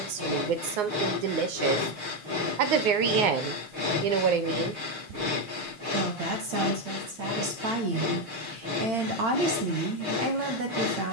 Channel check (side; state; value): left; late; 6.5 ms